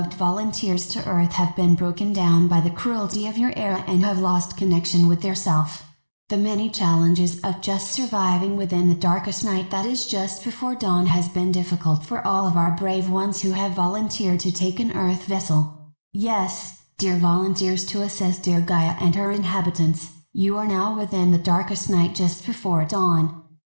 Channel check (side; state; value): both; inverted; correlation -1.00